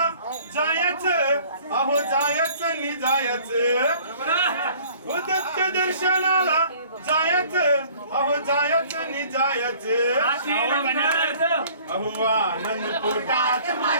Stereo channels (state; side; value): inverted; both; correlation -0.52